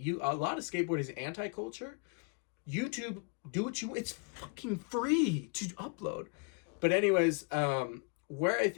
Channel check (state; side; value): quieter; right; 35.0 dB